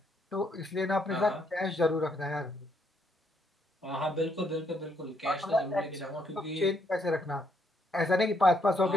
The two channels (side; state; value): both; normal; correlation 0.73